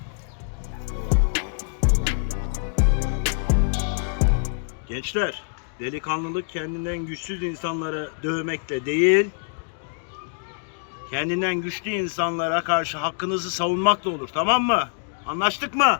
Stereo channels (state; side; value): silent; right; digital silence